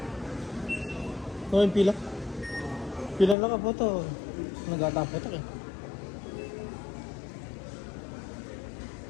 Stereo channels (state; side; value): drops out; right; at 3.4 s